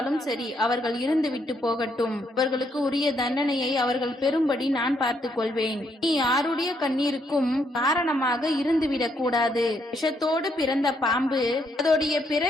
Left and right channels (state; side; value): normal; both; correlation 0.74